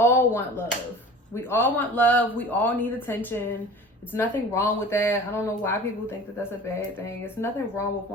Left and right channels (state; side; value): normal; both; correlation 0.41